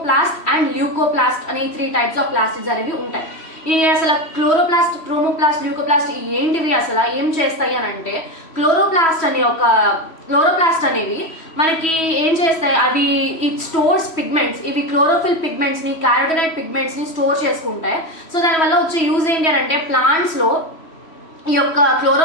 అండ్ ల్యూకోప్లాస్ట్ అనే 3 టైప్స్ ఆఫ్ ప్లాస్టిడ్స్ అనేవి ఉంటాయి. ఈ అసలు క్లోరోప్లాస్ట్, క్రోమోప్లాస్ట్, ల్యూకోప్లాస్ట్ ఏంటివి, అసలు ఏం చేస్తాయి అని అంటే, క్లోరోప్లాస్ట్ అనేవి మనకి ఏం చేస్తాయి, అవి ఇట్ స్టోర్స్ పిగ్మెంట్స్. ఇవి క్లోరోఫిల్ పిగ్మెంట్స్ ని, క్యారోటినాయిడ్ పిగ్మెంట్స్ ని స్టోర్ చేసుకుంటాయి. సో దానివల్ల వచ్చే యూజ్ ఏంటి అని అంటే, ప్లాంట్స్ లో ఈ యొక్క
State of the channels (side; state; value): right; late; 3.1 ms